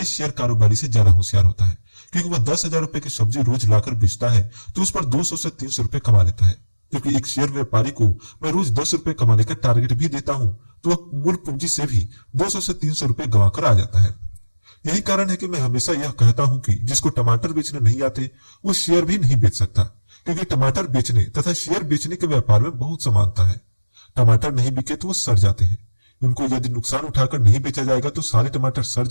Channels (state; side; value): inverted; both; correlation -1.00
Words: शेयर कारोबारी से ज्यादा होशियार होता है, क्योंकि वह 10,000 रुपए की सब्जी रोज लाकर बेचता है तो उस पर 200 से 300 रुपए कमा लेता है। क्योंकि एक शेयर व्यापारी को मैं रोज 10 रुपए कमाने का टारगेट भी देता हूं तो वह मूल पूंजी से भी 200 से 300 रुपए गंवा कर आ जाता है। यही कारण है कि मैं हमेशा यह कहता हूं कि जिसको टमाटर बेचने नहीं आते वो शेयर भी नहीं बेच सकता, क्योंकि टमाटर बेचने तथा शेयर बेचने के व्यापार में बहुत समानता है। टमाटर नहीं बिके तो वो सड़ जाते हैं। उनको यदि नुकसान उठाकर नहीं बेचा जाएगा तो सारे टमाटर सड़